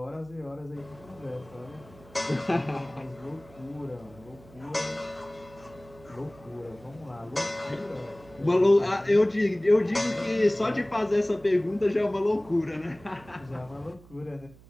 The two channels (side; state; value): right; noise; hum, 23 dB below the sound